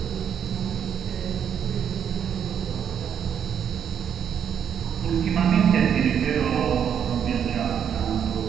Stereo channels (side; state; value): left; quieter; 8.4 dB